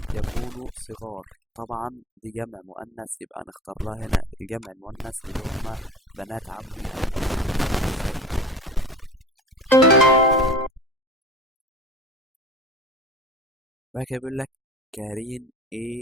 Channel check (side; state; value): both; normal; correlation 0.38